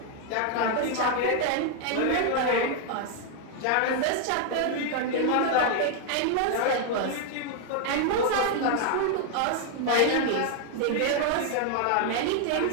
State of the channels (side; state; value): both; different; correlation 0.00